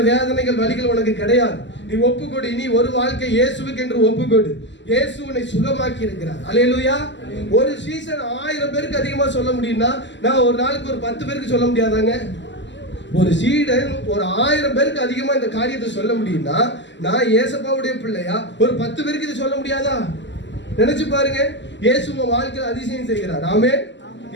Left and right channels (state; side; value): late; right; 0.53 ms